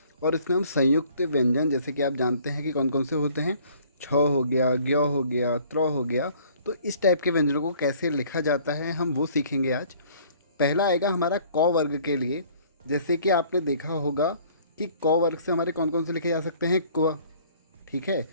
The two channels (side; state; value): both; inverted; correlation -0.56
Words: और इसमें हम संयुक्त व्यंजन, जैसे कि आप जानते हैं कि कौन कौन से होते हैं, छ हो गया, ज्ञ हो गया, त्र हो गया, तो इस टाइप के व्यंजनों को कैसे लिखा जाता है हम वो सीखेंगे आज। पहला आएगा हमारा क वर्ग के लिए। जैसे कि आपने देखा होगा कि क वर्ग से हमारे कौन कौन से लिखे जा सकते हैं, क्व, ठीक है,